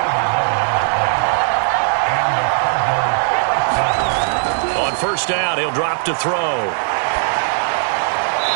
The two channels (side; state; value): left; silent; digital silence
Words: On first down, he'll drop to throw.